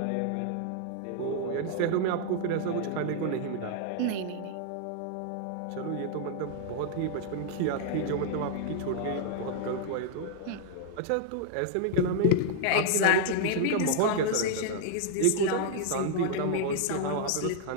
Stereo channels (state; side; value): different; both; correlation -0.01